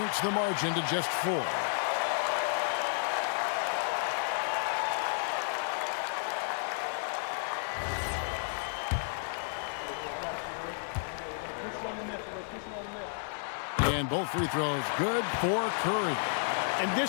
the margin to just 4. And both free throws good for Curry. In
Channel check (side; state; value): right; silent; 56 dB below the other